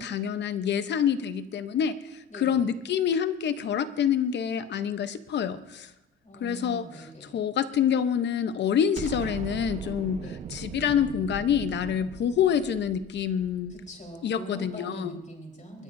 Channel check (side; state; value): right; quieter; 7.5 dB